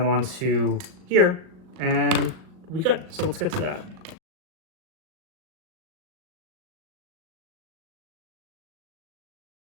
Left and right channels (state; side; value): late; left; 38 ms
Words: onto here, and we good. So let's get to that.